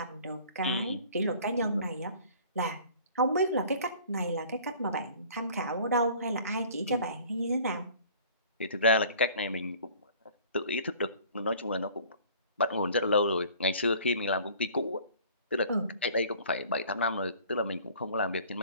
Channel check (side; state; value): both; inverted; correlation -0.50